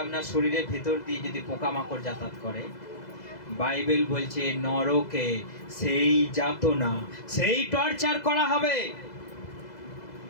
আপনার শরীরের ভেতর দিয়ে যদি পোকামাকড় যাতায়াত করে। বাইবেল বলছে নরকে সেই যাতনা, সেই টর্চার করা হবে,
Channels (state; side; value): late; right; 2.0 ms